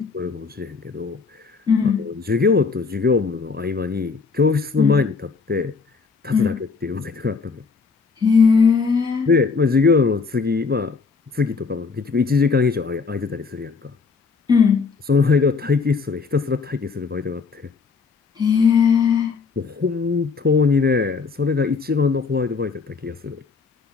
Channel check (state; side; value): quieter; right; 4.9 dB